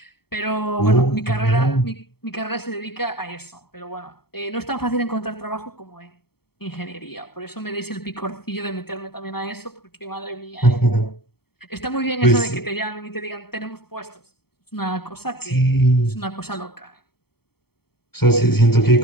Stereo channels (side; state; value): right; late; 0.96 ms